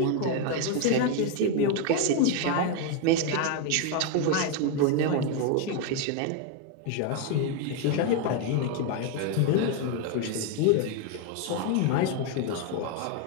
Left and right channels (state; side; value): different; both; correlation 0.01